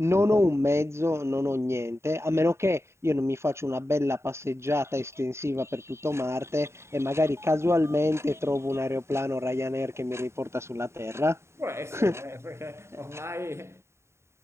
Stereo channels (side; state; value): left; late; 0.13 ms